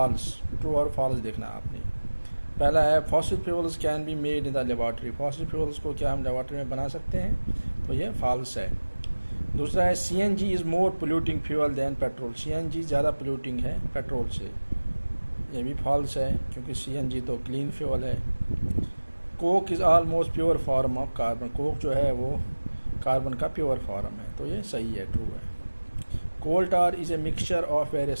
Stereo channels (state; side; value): inverted; both; correlation -1.00